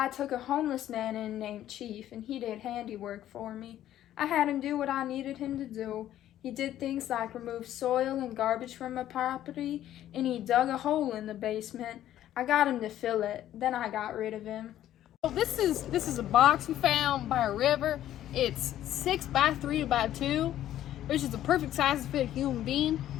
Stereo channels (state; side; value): quieter; right; 12.3 dB